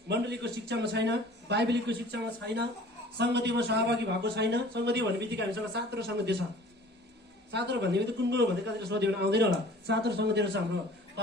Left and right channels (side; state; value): both; normal; correlation 0.47